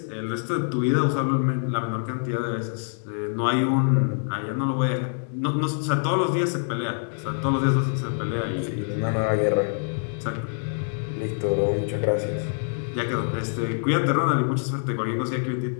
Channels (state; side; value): silent; right; digital silence